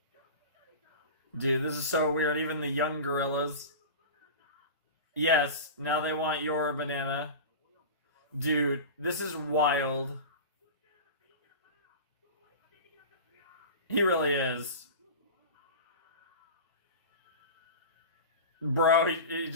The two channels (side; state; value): both; inverted; correlation -0.30